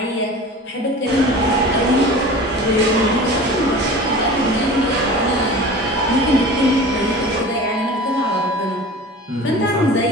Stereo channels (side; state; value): both; normal; correlation 0.37